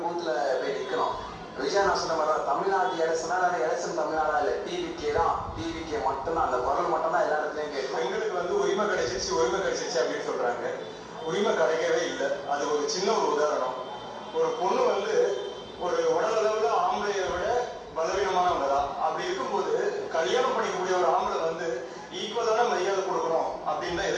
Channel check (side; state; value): both; identical; correlation 1.00